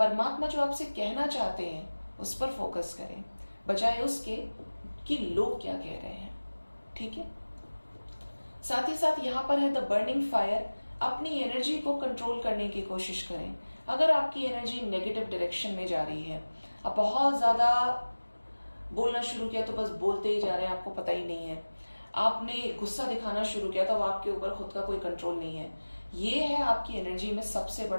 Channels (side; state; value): both; inverted; correlation -1.00